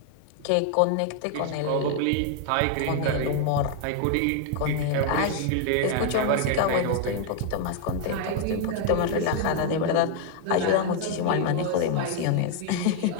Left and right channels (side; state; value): both; different; correlation 0.00